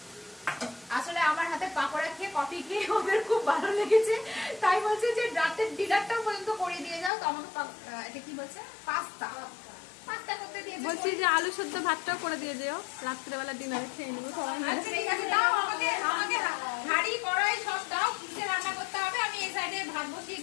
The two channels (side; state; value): right; drops out; at 7.1 s